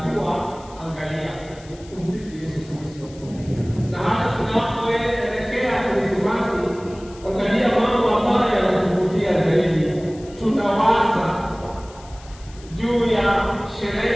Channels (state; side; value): noise; left; hiss, 23 dB below the sound